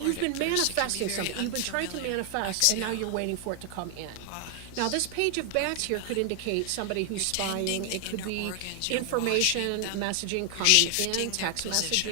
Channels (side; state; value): both; different; correlation 0.00